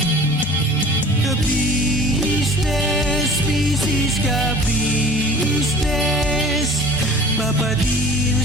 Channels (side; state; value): both; normal; correlation 0.45